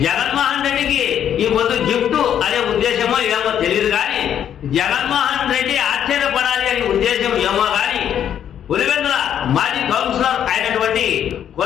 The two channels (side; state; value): right; quieter; 9.6 dB